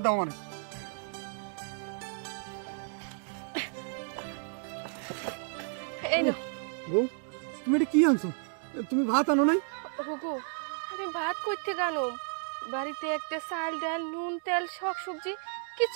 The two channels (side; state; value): left; silent; 56 dB below the other